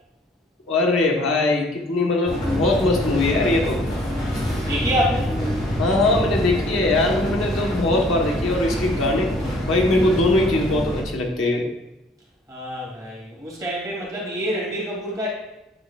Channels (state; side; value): normal; both; correlation 0.57